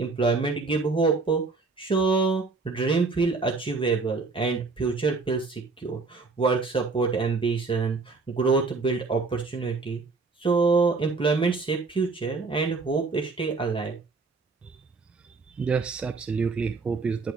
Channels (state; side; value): quieter; left; 4.2 dB